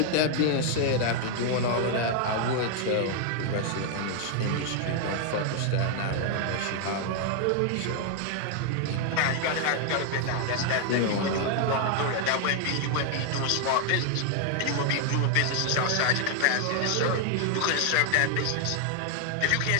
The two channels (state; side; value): different; both; correlation 0.00